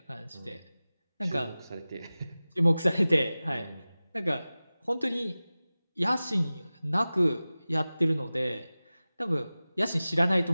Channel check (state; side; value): inverted; both; correlation -0.97